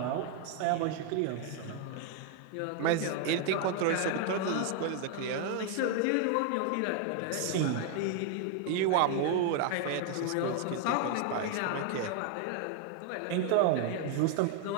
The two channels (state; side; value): different; both; correlation 0.00